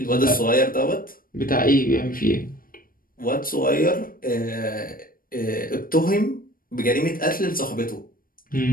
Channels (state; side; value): late; right; 0.41 ms